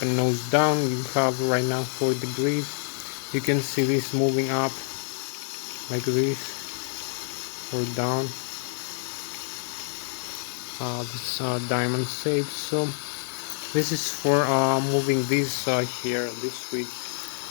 nose down. You have right now 4 degrees. You can see this moving up like this or down. This diamond shape. So this is for moving this here, this switch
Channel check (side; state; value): right; silent; 60 dB below the other